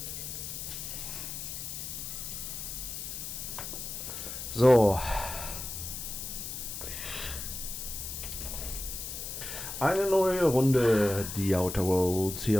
So. Eine neue Runde, die Outer Worlds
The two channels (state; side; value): noise; left; hiss, 6 dB below the sound